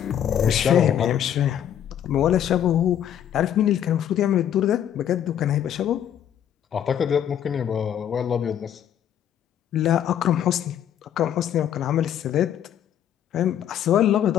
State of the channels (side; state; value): right; quieter; 10.0 dB